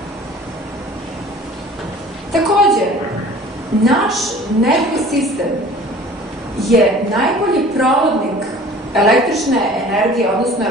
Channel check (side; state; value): both; normal; correlation 0.46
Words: Takođe, naš nervni sistem je najbolji provodnik električne energije, odnosno